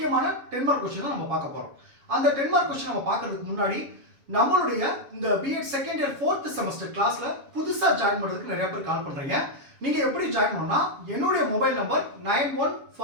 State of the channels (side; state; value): left; late; 7.2 ms